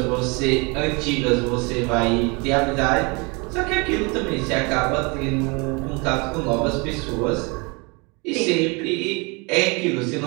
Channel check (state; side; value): quieter; left; 29.2 dB